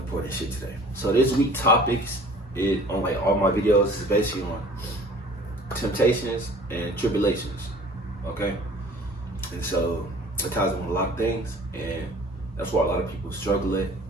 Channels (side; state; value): both; normal; correlation 0.49